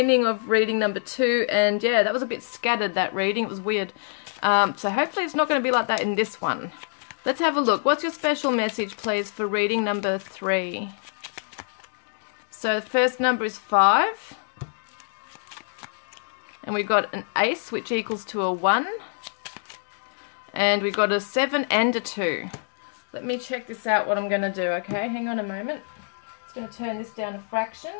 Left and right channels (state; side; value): silent; right; digital silence